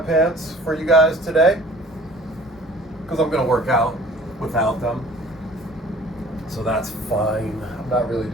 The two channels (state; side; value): normal; both; correlation 0.49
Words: for you guys today because I'm going to work out without them. So that's fine. I'm not really